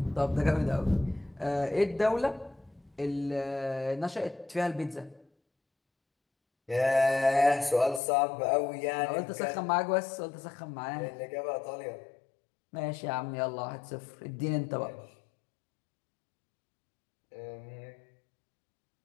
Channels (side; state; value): right; drops out; at 8.0 s